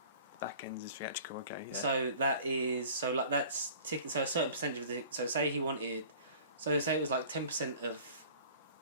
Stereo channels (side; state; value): both; inverted; correlation -0.46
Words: Back end is theatrical, okay. Yeah. So that's ticket. So a certain percentage of the. So say he wanted. So say it was like 10% of